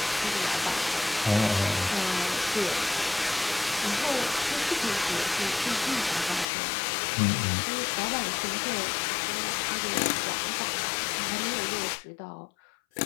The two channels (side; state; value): right; drops out; at 6.5 s